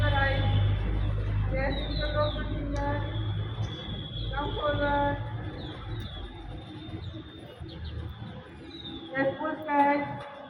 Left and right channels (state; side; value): identical; both; correlation 1.00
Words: your eyes, yes, use your open finger, come forward, yes, full stretch,